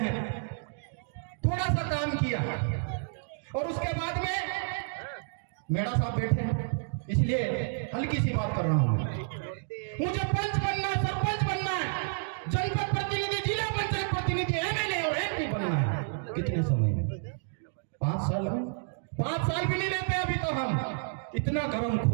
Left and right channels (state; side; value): silent; left; digital silence